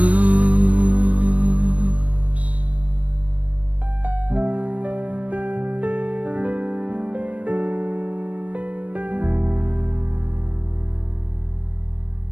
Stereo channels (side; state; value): left; late; 0.066 ms